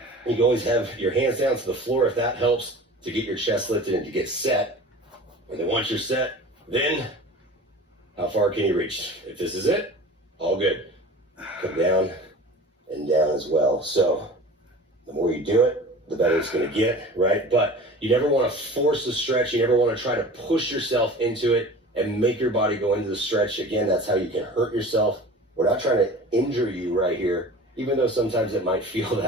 You can always have your hands down to the floor if that helps to get your chest lifted and to get set. And then once you're set, then how far can you reach? If this is it, all good. Come down and down as well. So the more you do it, the better it's going to get, right? But you never want to force the stretch. You never want to try to push yourself into it and make your body go into the stretch. Again, that's how you can hurt yourself. We're not trying to injure you right here, even though sometimes it might feel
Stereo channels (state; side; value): normal; both; correlation 0.39